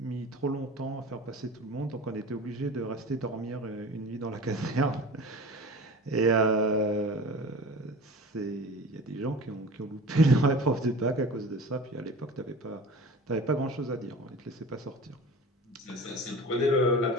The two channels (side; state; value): both; normal; correlation 0.37